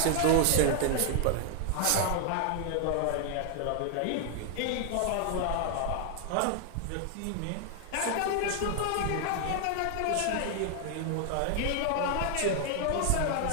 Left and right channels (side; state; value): both; different; correlation 0.00